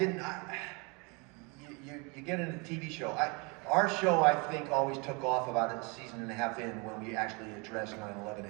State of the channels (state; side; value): quieter; left; 30.4 dB